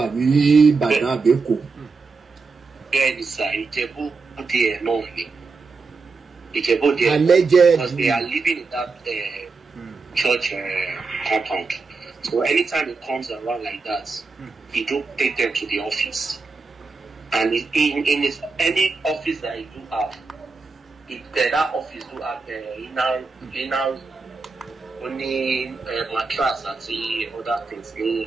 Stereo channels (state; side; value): quieter; left; 4.3 dB